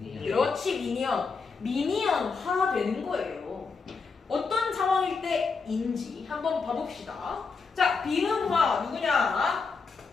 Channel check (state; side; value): quieter; right; 4.8 dB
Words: 그렇지 미니언. 미니언화 되는 거예요. 어떤 상황일 때인지 한번 봐봅시다. 자 비음화 누구냐?